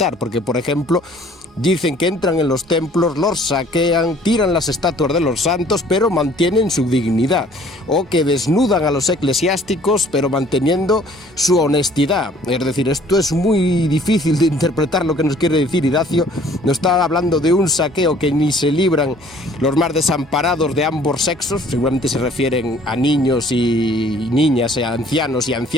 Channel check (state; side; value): normal; both; correlation 0.56